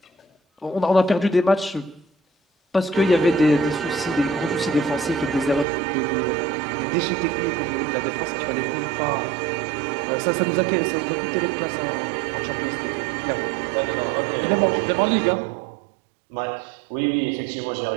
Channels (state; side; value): drops out; left; at 5.7 s